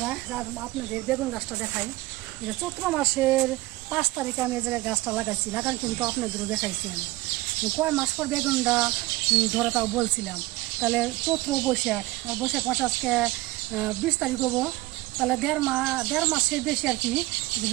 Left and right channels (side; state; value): left; quieter; 19.5 dB